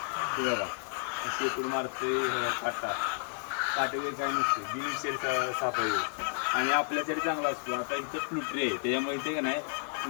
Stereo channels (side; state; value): right; silent; 57 dB below the other